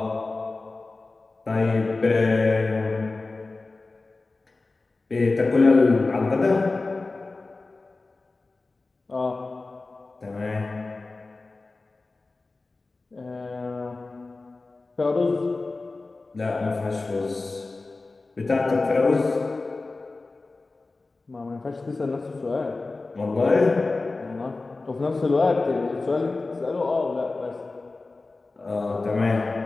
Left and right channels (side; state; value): right; quieter; 3.5 dB